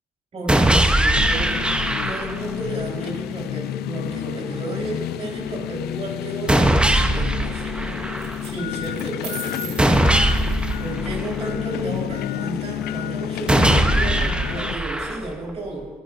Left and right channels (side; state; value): both; normal; correlation 0.74